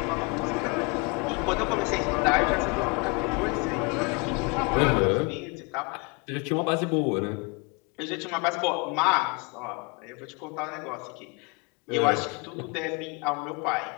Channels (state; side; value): quieter; right; 30.7 dB